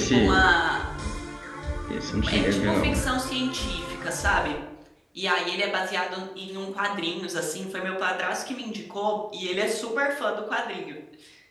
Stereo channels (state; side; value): identical; both; correlation 1.00